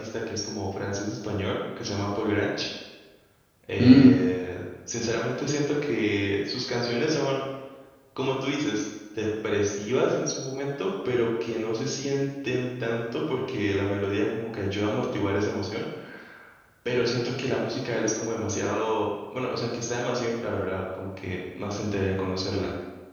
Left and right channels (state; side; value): identical; both; correlation 1.00